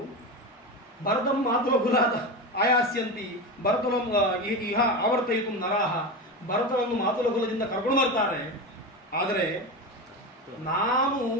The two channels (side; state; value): both; normal; correlation 0.21